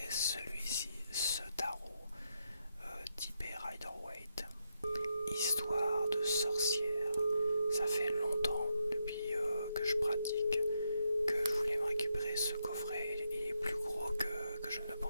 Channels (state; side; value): inverted; both; correlation -0.81